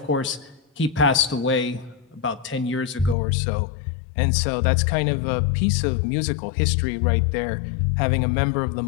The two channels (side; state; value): right; drops out; at 3.2 s